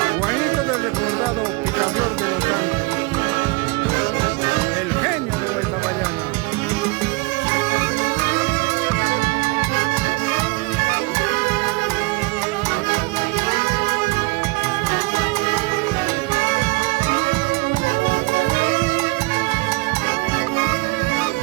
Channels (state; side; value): quieter; left; 26.7 dB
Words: Juanito del recordado Picaflor de los Santos, el genio de Guaytabayana.